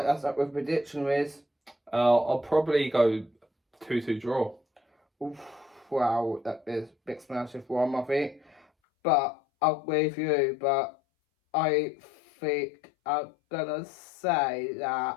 that's up with prediction, Riz. I'll probably go 2-2 draw. Oof, wow, that is a big massive one, I think. But I'll agree with you, but I think I'm gonna say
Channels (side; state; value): right; drops out; at 8.7 s